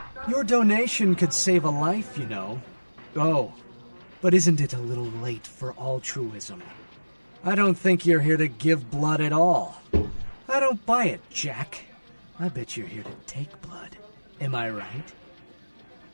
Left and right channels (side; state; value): both; inverted; correlation -1.00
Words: Your donation could save a life, you know. Oh, but isn't it a little late for altruism? I don't think you're here to give blood at all. I don't buy it, Jack. I bet you're here to take blood. Am I right?